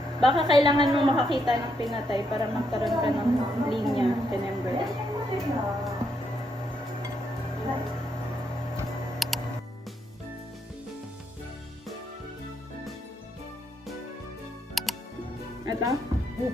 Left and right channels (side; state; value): both; normal; correlation 0.77